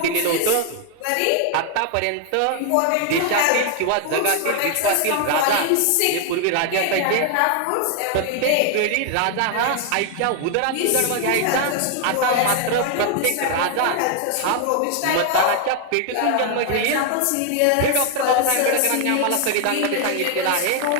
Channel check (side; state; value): both; different; correlation 0.00